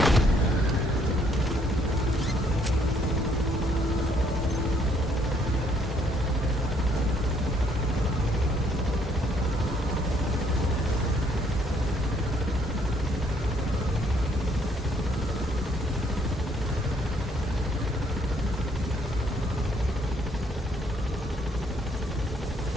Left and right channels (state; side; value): normal; both; correlation 0.67